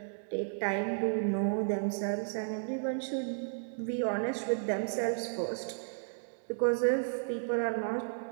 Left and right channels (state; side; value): silent; left; digital silence